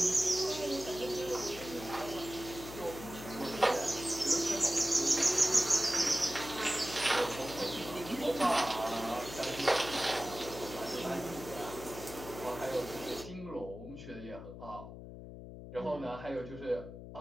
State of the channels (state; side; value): noise; left; hum, 12 dB below the sound